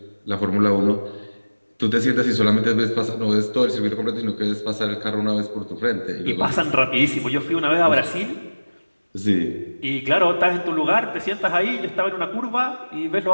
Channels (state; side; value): inverted; both; correlation -1.00